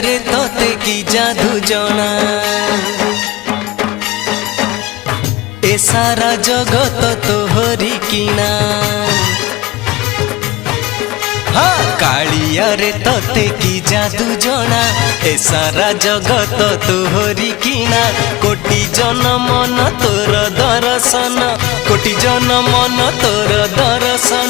रे तोते की जादू जना ए सारा जगत तोहरी किना। हाँ कालिया रे तोते की जादू जना ए सारा जगत तोहरी किना। कोटि जन्म न तोर दर्शन कोटि जन्म न तोर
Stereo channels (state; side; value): quieter; right; 19.3 dB